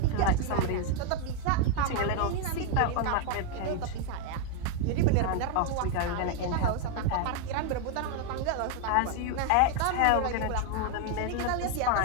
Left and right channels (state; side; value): different; both; correlation 0.00